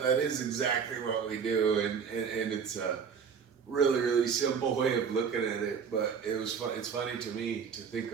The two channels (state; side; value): quieter; left; 6.5 dB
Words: that is exactly what we do, and it's a really, really simple way of looking at it. But it was fun. It's funny to me to think